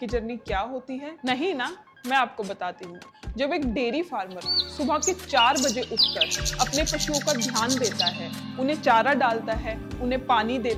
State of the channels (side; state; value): both; identical; correlation 1.00